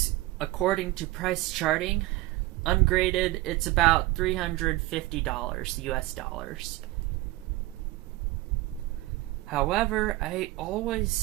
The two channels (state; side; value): quieter; left; 19.0 dB